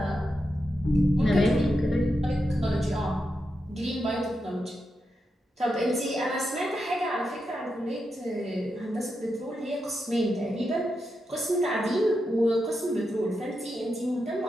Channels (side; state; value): both; normal; correlation 0.87